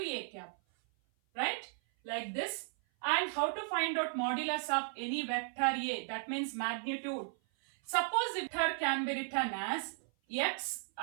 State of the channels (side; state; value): left; silent; 54 dB below the other